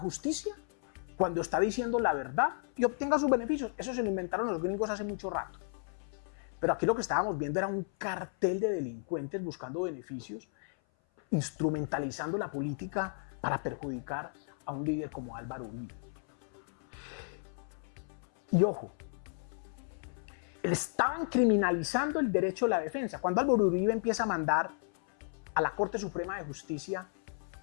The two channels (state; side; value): silent; right; 55 dB below the other